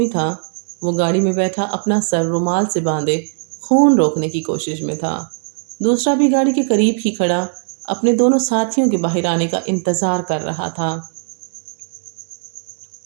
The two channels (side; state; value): left; silent; 67 dB below the other